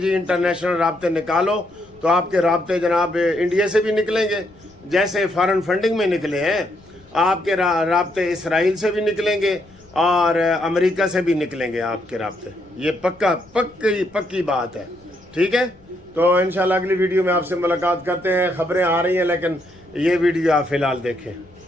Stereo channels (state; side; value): noise; left; rumble, 28 dB below the sound